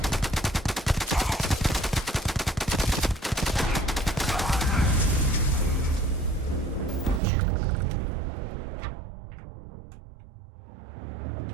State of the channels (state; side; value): drops out; left; at 7.2 s